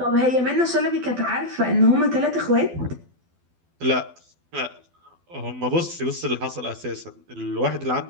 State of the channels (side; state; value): left; late; 12 ms